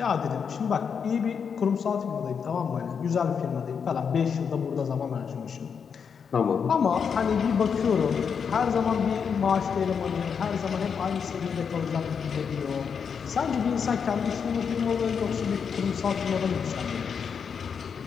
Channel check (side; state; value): right; quieter; 6.6 dB